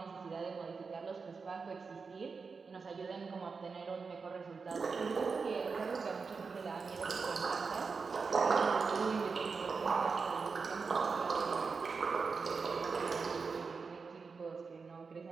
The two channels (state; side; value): quieter; left; 4.9 dB